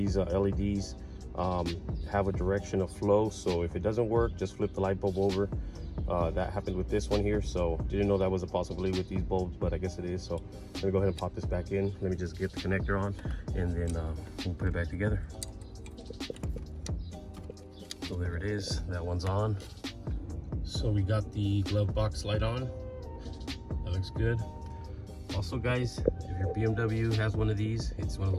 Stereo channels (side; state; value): both; identical; correlation 1.00